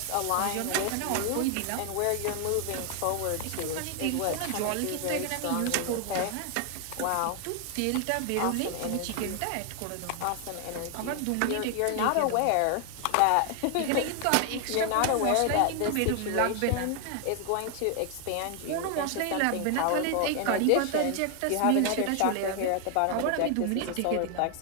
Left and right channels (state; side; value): different; both; correlation 0.00